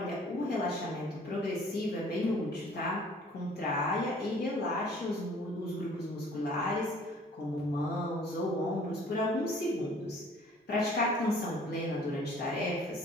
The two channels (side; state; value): both; normal; correlation 0.54